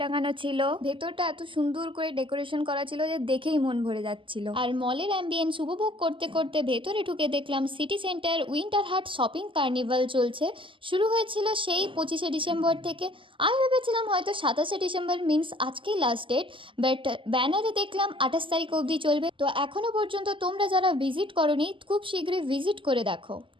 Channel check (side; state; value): left; late; 0.25 ms